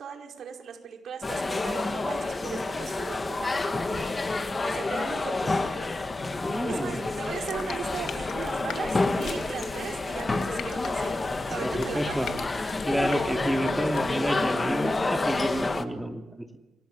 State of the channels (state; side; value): normal; both; correlation 0.92